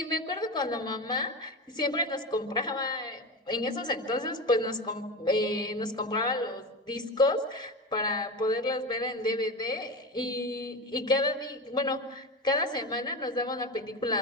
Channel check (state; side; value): normal; both; correlation 0.24